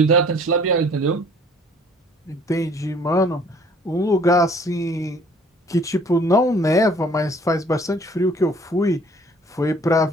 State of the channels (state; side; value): normal; both; correlation 0.55